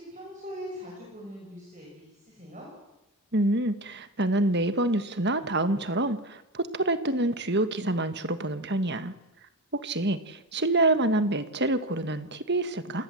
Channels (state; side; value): normal; both; correlation 0.21